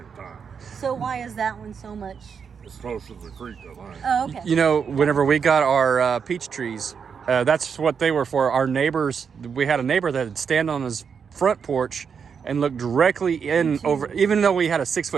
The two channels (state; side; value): quieter; left; 6.5 dB